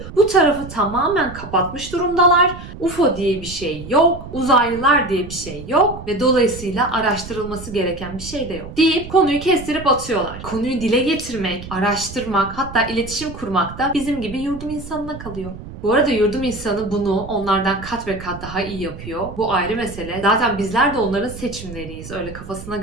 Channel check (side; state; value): right; noise; rumble, 13 dB below the sound